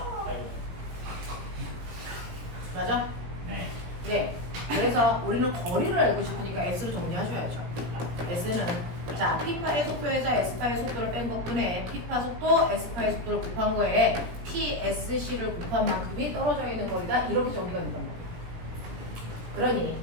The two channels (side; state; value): left; late; 17 ms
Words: 맞아? 그래서 우리는 거리를 알고 싶으니까 S로 정리하셔야죠. S는 자, P파의 속도에서 S파의 속도를 뺀 것뿐에 P파 속도, S파의 속도를 곱한 거에 PSC를 곱한 만큼이 떨어져 있는 거리다. 이렇게 정리가 된단 말이에요. 그러니